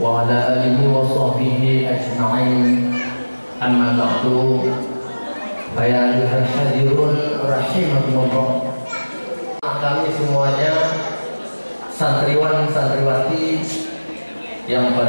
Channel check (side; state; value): both; inverted; correlation -1.00